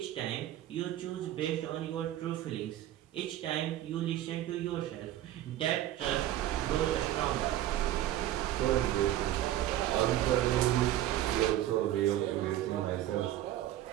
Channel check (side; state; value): left; quieter; 13.3 dB